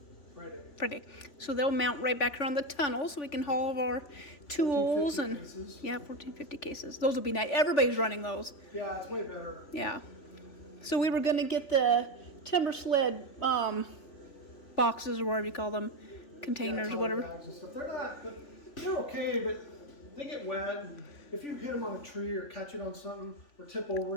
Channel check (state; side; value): late; right; 3.5 ms